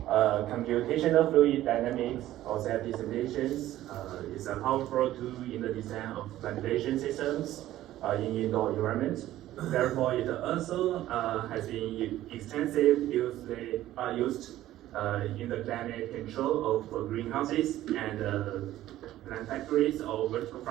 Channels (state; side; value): quieter; left; 14.2 dB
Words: Computational fluid dynamics or safety simulations is a powerful tool in the design of ventilation systems in indoor environment. Therefore, it also has been extensively used in the climate control of greenhouses and plant factories or vertical